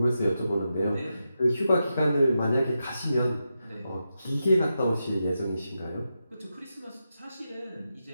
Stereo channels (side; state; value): both; inverted; correlation -0.88